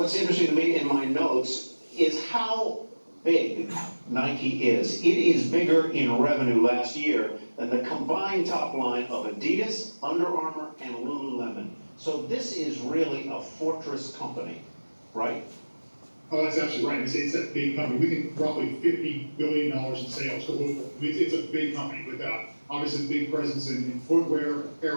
interesting to me in my notes is how big Nike is. It is bigger in revenue last year than the combined top line of Adidas, Under Armour, and Lululemon. So this is really a fortress company, right? Oh, that's absolutely right. It's a big company. We think roughly $50 billion in sales globally. It's a big company with obviously a big presence in footwear,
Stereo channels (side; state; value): both; inverted; correlation -1.00